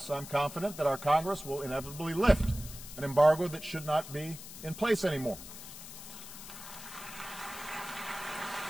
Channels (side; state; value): left; noise; hiss, 13 dB below the sound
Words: I'm confident that our Congress will inevitably lift an embargo that should not be in place anymore.